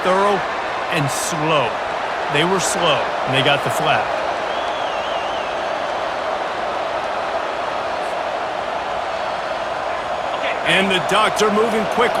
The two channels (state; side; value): identical; both; correlation 1.00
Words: thorough and slow. They were slow, and they got the flag. And the Ducks are moving